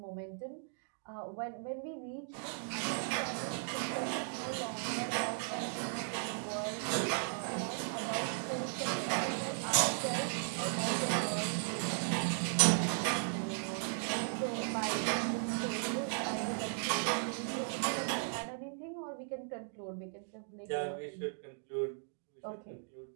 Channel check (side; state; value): left; silent; digital silence